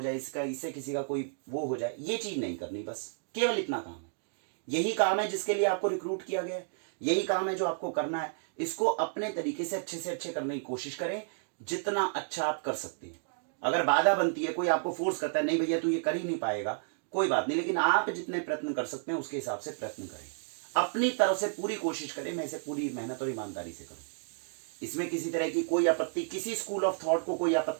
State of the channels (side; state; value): left; silent; digital silence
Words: जाए, इससे किसी का कोई वो हो जाए, ये चीज नहीं करनी। बस केवल इतना काम है। यही काम है जिसके लिए आपको रिक्रूट किया गया है, यही काम है जो आपको करना है। इसको अपने तरीके से अच्छे करने की कोशिश करें, जितना अच्छा आप कर सकते हैं। अगर बाधा बनती है, कोई आपको फोर्स करता है नहीं भैया तू ये कर ही नहीं पाएगा, कोई बात नहीं, लेकिन आप जितने प्रयत्न कर सकते हैं उसके हिसाब से प्रयत्न करें, अपनी तरफ से पूरी कोशिश करें, मैं इसे पूरी मेहनत और ईमानदारी से करूं। इसमें किसी तरह की कोई आपत्ति, किसी स्कूल ऑफ थॉट को कोई